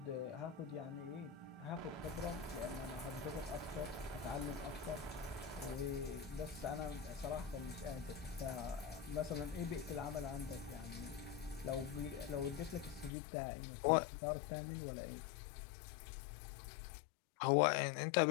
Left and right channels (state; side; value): drops out; right; at 13.1 s